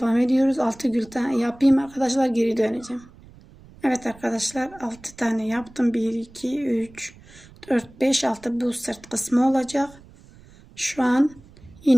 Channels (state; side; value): noise; right; rumble, 23 dB below the sound